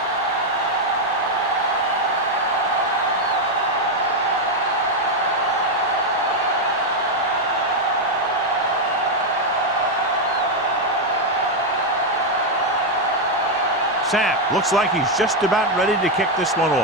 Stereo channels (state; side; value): normal; both; correlation 0.02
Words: Sapp looks like he's just about ready to kick this one